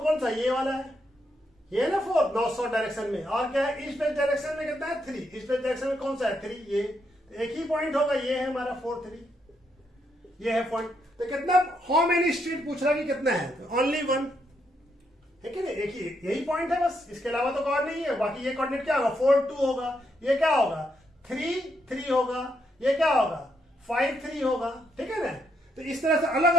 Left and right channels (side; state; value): both; normal; correlation 0.78